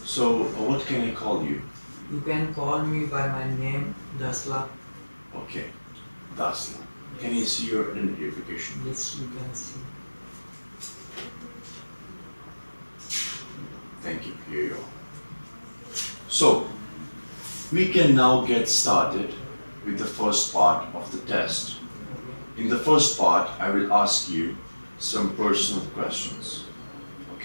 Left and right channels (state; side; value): inverted; both; correlation -1.00